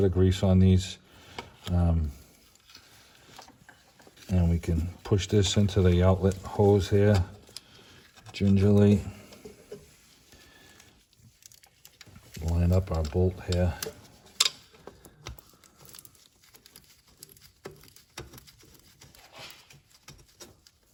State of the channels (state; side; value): identical; both; correlation 1.00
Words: of grease on these. And we can push this into the outlet hose here gingerly. Line up our bolt here.